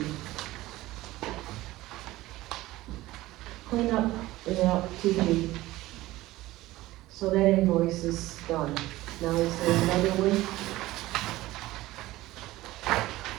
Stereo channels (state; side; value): quieter; left; 17.4 dB